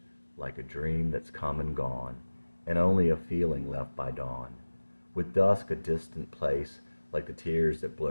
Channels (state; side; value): inverted; both; correlation -1.00